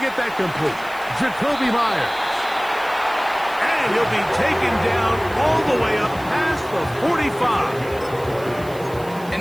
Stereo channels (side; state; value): right; noise; hiss, 21 dB below the sound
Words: that complete. Jacoby Myers. And he'll be taken down all the way up past the 45.